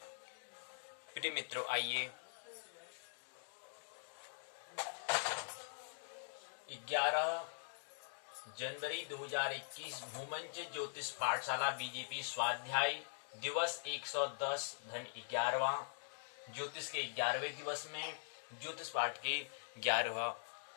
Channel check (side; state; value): right; silent; digital silence